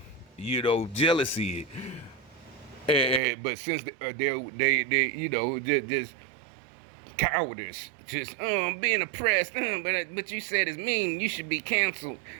you know, jealousy. But since they you know, just cowardice, just being oppressed, but you said it's mean, you should be canceled.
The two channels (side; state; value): left; drops out; at 3.2 s